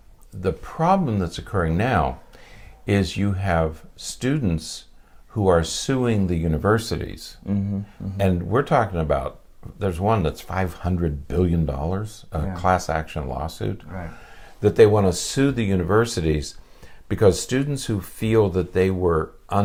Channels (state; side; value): identical; both; correlation 1.00